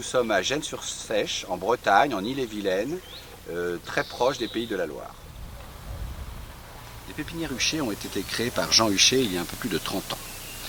sommes à Gennes-sur-Seiche, en Bretagne, en Ille-et-Vilaine, très proche des Pays de la Loire. Les pépinières Huchet ont été créées par Jean Huchet il y a un peu plus de 30 ans.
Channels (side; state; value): both; identical; correlation 1.00